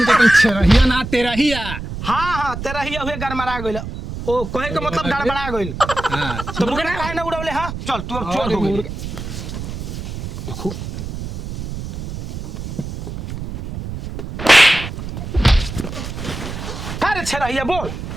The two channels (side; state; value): right; noise; rumble, 7 dB below the sound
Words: तो छेरहिया ना तेरहिया। हाँ हाँ तेरा ही अबे गड़बड़ा गइल। ओ कहे के मतलब गड़बड़ा गइल। हाँ तो मुर्गा ना काहे ना उड़ावले। हाँ चल तू अब चोर हो गइल। देखो का रे छेड़हिया बोल।